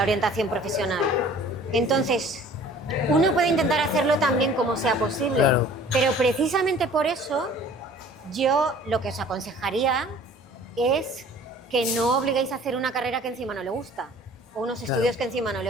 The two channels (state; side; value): normal; both; correlation 0.49